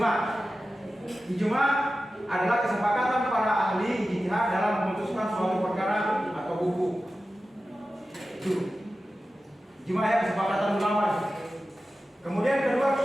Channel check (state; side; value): normal; both; correlation 0.94